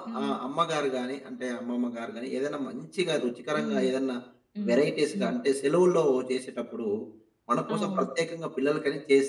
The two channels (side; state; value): both; identical; correlation 1.00